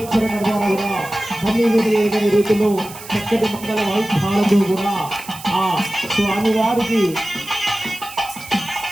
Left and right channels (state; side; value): noise; right; hiss, 16 dB below the sound